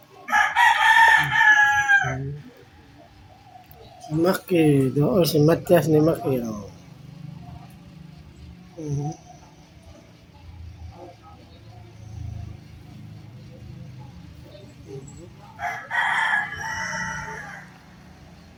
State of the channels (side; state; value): both; identical; correlation 1.00